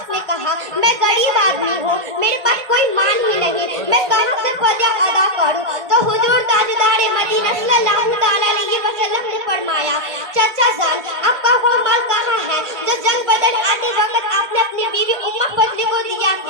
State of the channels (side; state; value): left; late; 1.5 ms